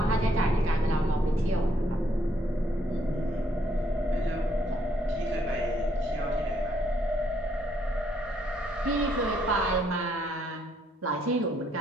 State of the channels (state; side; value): normal; both; correlation 0.71